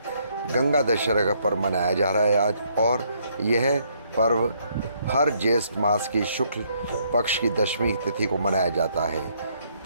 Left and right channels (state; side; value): inverted; both; correlation -0.70